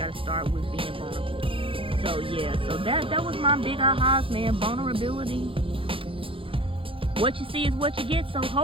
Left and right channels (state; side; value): late; left; 0.26 ms